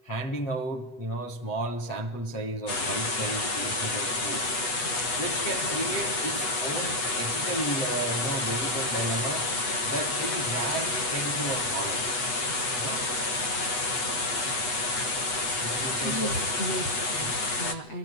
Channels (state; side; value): late; right; 8.2 ms